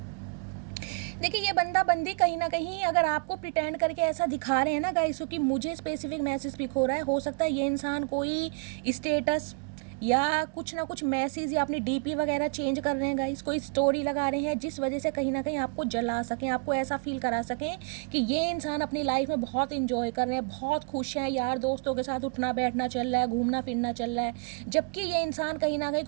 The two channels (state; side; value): quieter; left; 36.5 dB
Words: देखिए ये बंदा बंदी कहीं ना कहीं अगर आपको प्रिटेंड करके ऐसा दिखा रहे हैं ना गाइस, क्योंकि मुझे स्पेसिफिक मैसेज पिक हो रहा है, हो सकता है ये इंसान कोई स्टेटस या कुछ ना कुछ मैसेज या अपनी डीपी वगैरह चेंज कर रहे हैं गाइस, कोई स्टोरी लगा रहे हैं जिस वजह से कहीं ना कहीं आपको जला सकें, आपको ऐसा फील करा सकें कि ये इंसान अपनी लाइफ में बहुत इंजॉय कर रहे हैं, बहुत खुश हैं, यार दोस्तों के साथ उठना बैठना चल रहा है, घूमना फिरना चल रहा है, जबकि ये इंसान कहीं ना कहीं